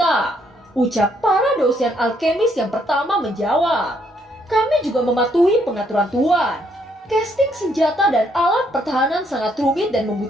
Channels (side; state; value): both; normal; correlation 0.71